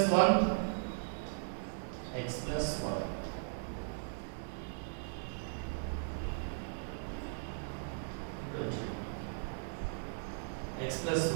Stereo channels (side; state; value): left; silent; digital silence